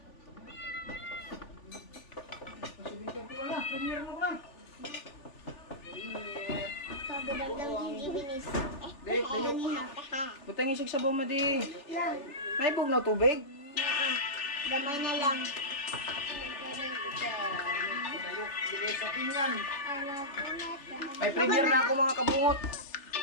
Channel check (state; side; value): late; right; 3.4 ms